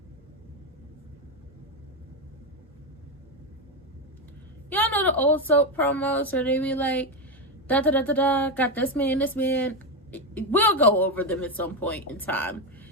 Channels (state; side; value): normal; both; correlation 0.10